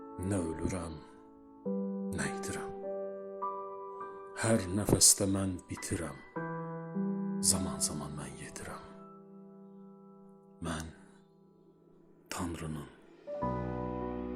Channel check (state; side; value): identical; both; correlation 1.00